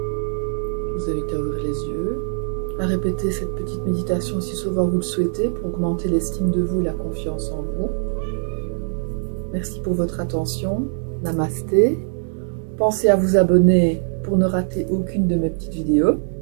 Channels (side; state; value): left; silent; 64 dB below the other